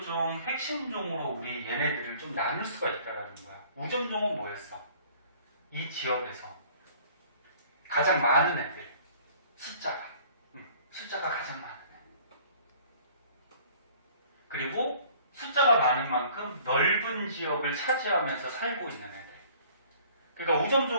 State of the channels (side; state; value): both; inverted; correlation -0.53